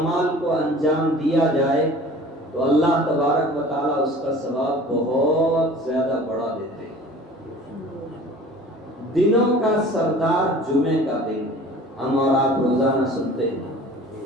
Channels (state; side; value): normal; both; correlation 0.45